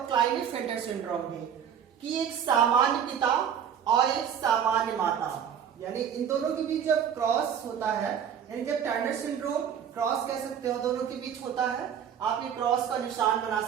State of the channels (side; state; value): left; quieter; 8.4 dB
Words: क्लाइनेफेल्टर सिंड्रोम भी, कि एक सामान्य पिता और एक सामान्य माता, यानी इन दोनों के बीच जब क्रॉस होता है, यानी जब टर्नर सिंड्रोम क्रॉस कह सकते हो दोनों के बीच होता है, आप ये क्रॉस का निशान बना